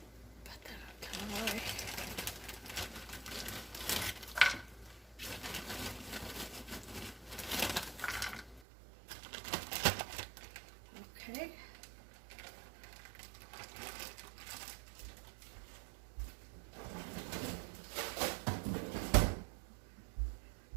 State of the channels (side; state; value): left; drops out; at 8.6 s